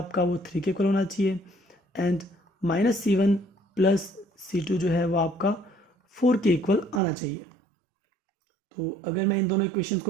वो 3 के इक्वल होना चाहिए and minus c1 plus c2 जो है वो आपका 4 के इक्वल आना चाहिए। तो अगर मैं इन दोनों इक्वेशंस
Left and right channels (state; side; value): drops out; left; at 7.0 s